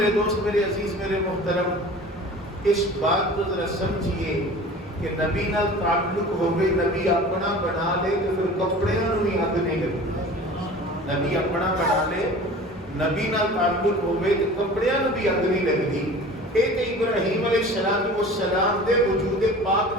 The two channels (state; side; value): normal; both; correlation 0.41